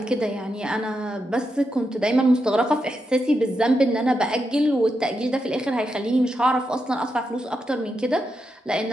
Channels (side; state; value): both; normal; correlation 0.85